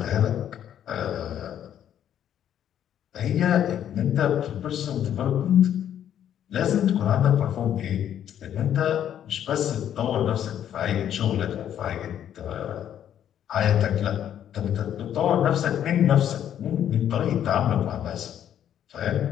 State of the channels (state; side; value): quieter; right; 10.2 dB